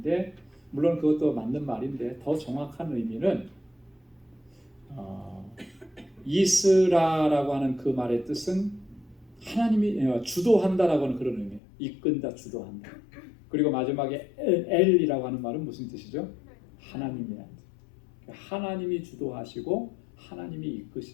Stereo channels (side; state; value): right; drops out; at 11.6 s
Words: 물론 그것도 맞는 말인데 더 정확한 의미는 이스라라고 하는 그 말의 뜻은 하나님이 주도한다라고 하는 그런 의미예요. 이끈다, 주도한다. 그리고 마지막에 엘이라고 하는 말은 무슨 뜻이죠? 하나님이라는 뜻. 하나님이 주도하시고 하나님이